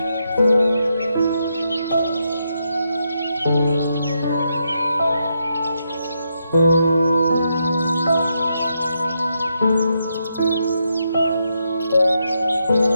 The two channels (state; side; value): inverted; both; correlation -0.81